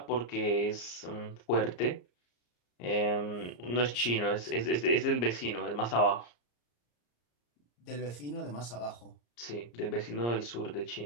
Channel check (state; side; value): late; right; 34 ms